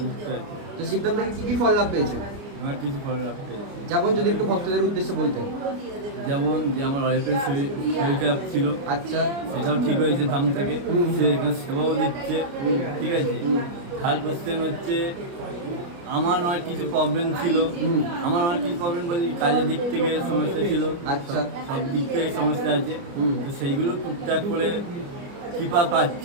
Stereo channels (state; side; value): late; left; 29 ms